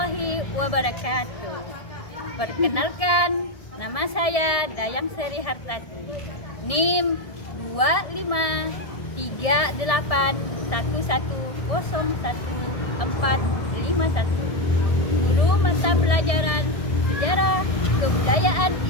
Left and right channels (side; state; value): right; late; 1.7 ms